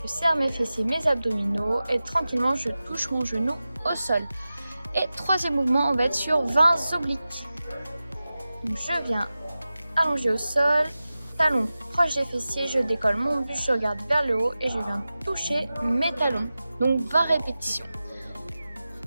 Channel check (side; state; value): both; inverted; correlation -0.95